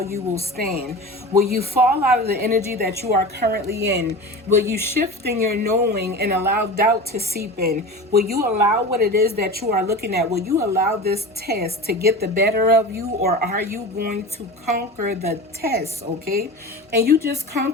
you will stand. Will you fall out of the energy that you are currently in? Will you shift in your knowing and allow doubt to seep in? Will you allow what it is that you are looking at? Will you allow this test to get the better of you, or are you going to conquer the test? Okay, and you just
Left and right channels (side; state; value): both; normal; correlation 0.31